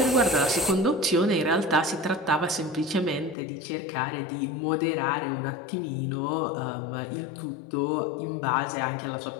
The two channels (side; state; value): right; drops out; at 3.4 s